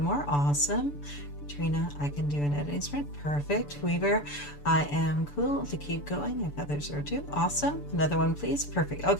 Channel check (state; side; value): late; right; 6.9 ms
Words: Awesome. Katrina, I can do an editing sprint. Perfect. Weaver, I am cool to keep going if others are too. Awesome. Another one, please. Perfect.